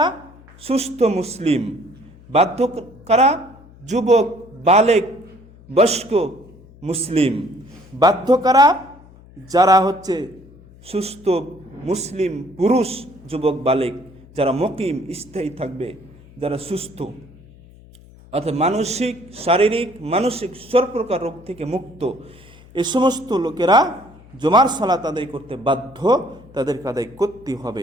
সুস্থ মুসলিম। বাধ্য কারা? যুবক, বালেক, বয়স্ক মুসলিম। বাধ্য কারা? যারা হচ্ছে সুস্থ মুসলিম পুরুষ, যুবক, বালেক, যারা মুকিম, স্থায়ী থাকবে, যারা সুস্থ, অর্থাৎ মানসিক, শারীরিক, মানসিক সব প্রকার রোগ থেকে মুক্ত, এই সমস্ত লোকেরা জুমার সালাত আদায় করতে বাধ্য, তাদেরকে আদায় করতে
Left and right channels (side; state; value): left; noise; hum, 23 dB below the sound